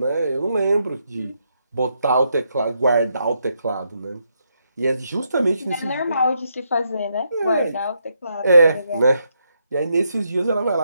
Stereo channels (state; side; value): inverted; both; correlation -0.79